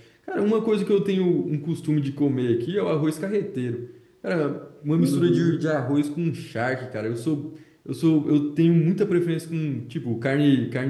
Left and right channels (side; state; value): both; identical; correlation 1.00